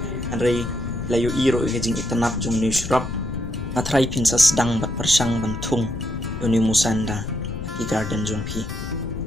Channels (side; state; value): left; noise; rumble, 7 dB below the sound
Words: andrei pilayo iro ga jing itanap jong ni shrub natrai pinsa sedang bat persang bantung uni musanda ki garden jong pi